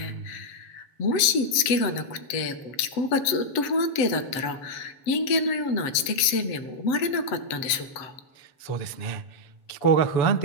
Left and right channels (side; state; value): right; late; 7.9 ms